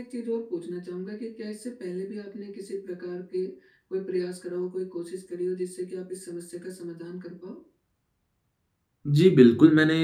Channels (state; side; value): identical; both; correlation 1.00